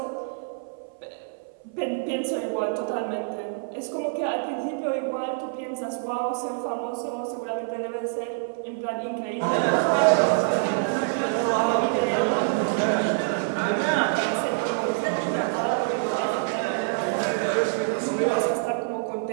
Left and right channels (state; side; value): silent; left; 57 dB below the other